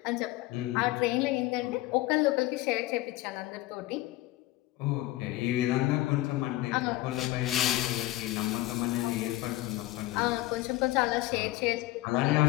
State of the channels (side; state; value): right; quieter; 17.4 dB